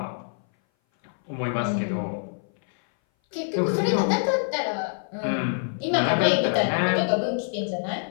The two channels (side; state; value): right; silent; 58 dB below the other